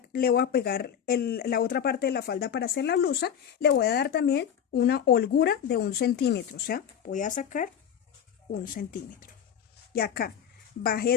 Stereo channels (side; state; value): right; quieter; 8.7 dB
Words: le voy a pegar la otra parte de la falda para hacer la blusa, le voy a dar también una holgura de 1 centímetro. O sea, voy a sacar 1 centímetro. Y acá